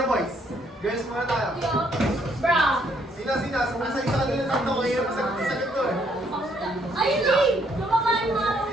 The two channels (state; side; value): normal; both; correlation 0.69